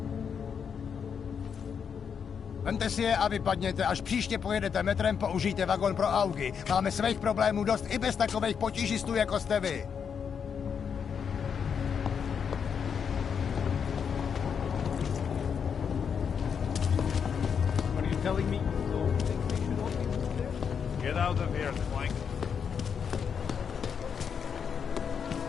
Vemte si je a vypadněte. Až příště pojedete metrem, použijte vagon pro augy. Máme svých problémů dost i bez takových potížistů, jako jste vy. What are you telling me? Get out of here, Clank.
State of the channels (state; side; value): quieter; right; 7.0 dB